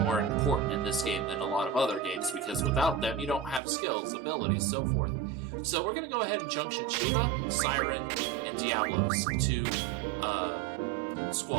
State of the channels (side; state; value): left; drops out; at 3.6 s